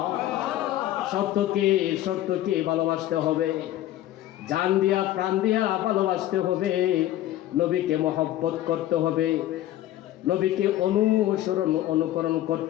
শর্তকে ভালোবাসতে হবে, জান দিয়া প্রাণ দিয়া ভালোবাসতে হবে, নবীকে মহব্বত করতে হবে, নবীকে অনুকরণ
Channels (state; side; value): quieter; right; 13.8 dB